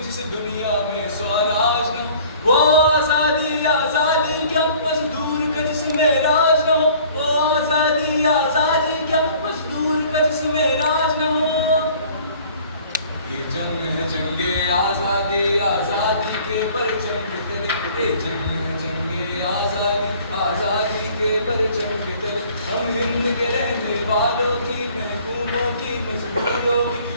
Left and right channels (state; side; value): inverted; both; correlation -0.52